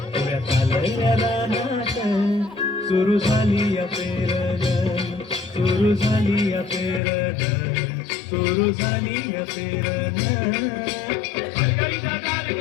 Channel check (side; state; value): right; drops out; at 7.0 s